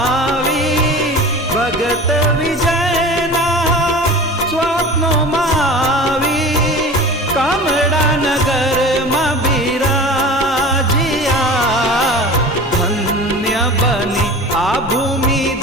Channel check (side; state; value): both; normal; correlation 0.36